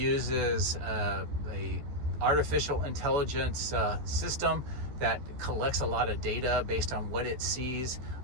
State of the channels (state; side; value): late; left; 14 ms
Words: a artificial intelligence system that collects a lot of data based on what it sees